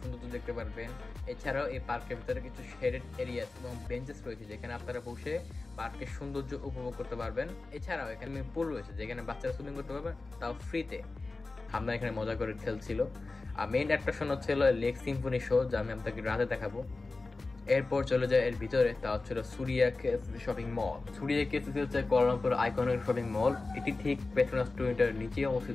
দেখতে পারবেন। এছাড়াও এই পার্কের ভিতরে কিছু শেডেড এরিয়াস এবং বেঞ্চেস রয়েছে যেখানে আপনারা বসে পার্কের সৌন্দর্য উপভোগ করতে পারবেন। এছাড়াও এখানে পুল রয়েছে যেখানে বাচ্চারা সুইমিং করতে পারবেন, তাও ফ্রিতে। আমরা এখানে মজা করে খেলছিল। আর মেইন অ্যাট্রাকশন হচ্ছিল লেক সিম্ফনি শো, যা আমি আপনাকে রাতে দেখাবো। এরপর চলে যায় এর ভিতরে, তা হচ্ছিল Surya KSC shopping mall. Surya KSC হচ্ছে কুয়ালালামপুর আইকনিক শপিং মল। এটি ঠিক পেট্রোনাস টুইন টাওয়ারের নিচেই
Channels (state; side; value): quieter; right; 3.5 dB